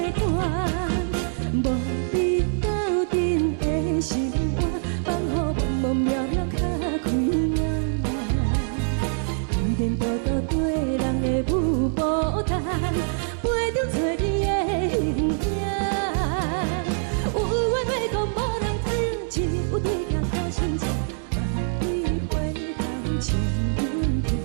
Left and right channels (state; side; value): silent; left; digital silence